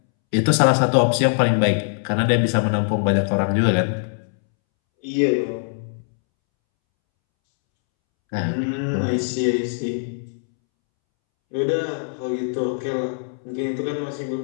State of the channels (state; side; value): silent; right; 64 dB below the other